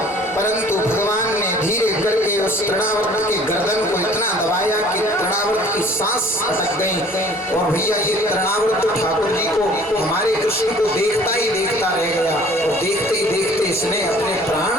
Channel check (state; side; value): normal; both; correlation 0.52